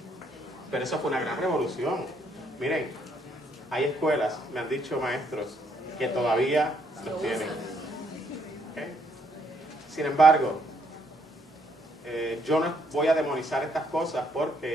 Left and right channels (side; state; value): both; normal; correlation 0.71